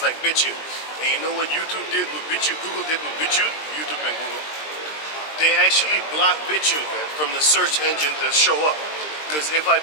like BitChute. And you know what YouTube did with BitChute, Google did with BitChute? YouTube and Google. They actually blocked BitChute, man, from the search engine to show up. Because if I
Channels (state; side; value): late; right; 20 ms